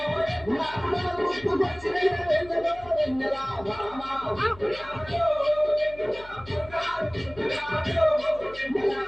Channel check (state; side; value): noise; left; hum, 20 dB below the sound